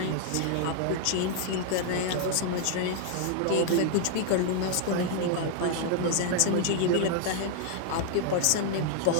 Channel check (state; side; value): different; both; correlation 0.00